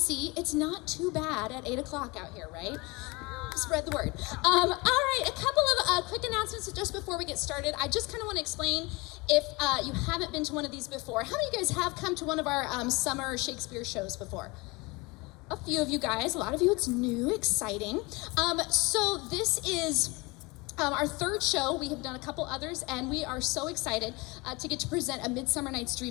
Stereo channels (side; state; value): right; quieter; 25.4 dB